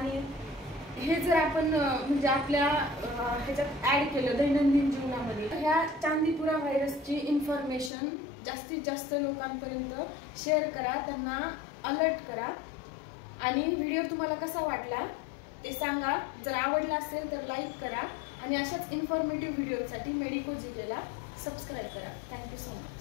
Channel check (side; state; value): right; drops out; at 7.9 s